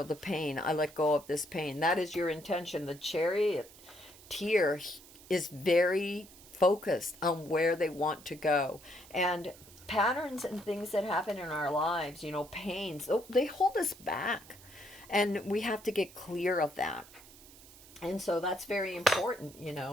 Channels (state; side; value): noise; right; hiss, 21 dB below the sound